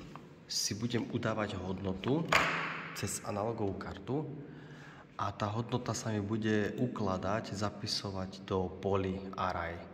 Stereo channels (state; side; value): identical; both; correlation 1.00